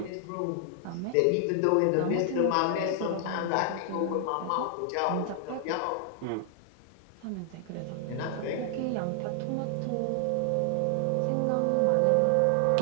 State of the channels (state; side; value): different; both; correlation 0.00